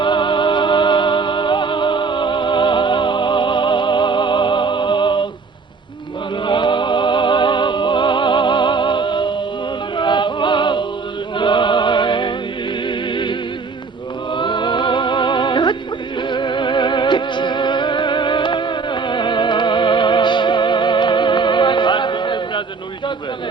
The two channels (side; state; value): left; quieter; 4.6 dB